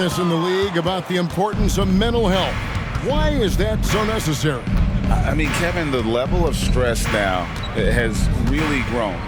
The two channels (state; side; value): identical; both; correlation 1.00